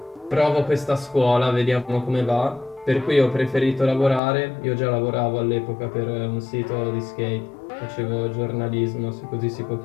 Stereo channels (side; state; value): right; drops out; at 4.2 s